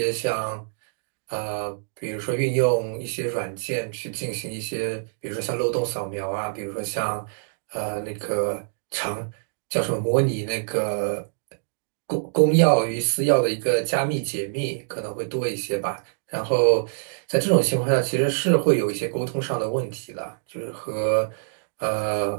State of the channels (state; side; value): silent; left; digital silence